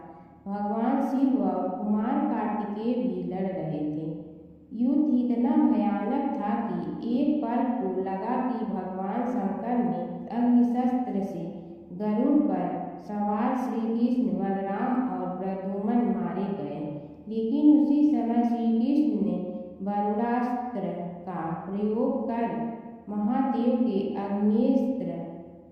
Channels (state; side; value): identical; both; correlation 1.00